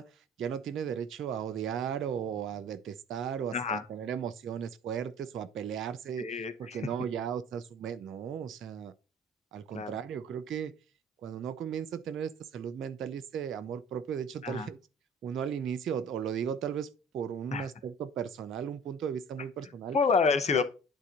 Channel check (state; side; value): normal; both; correlation 0.46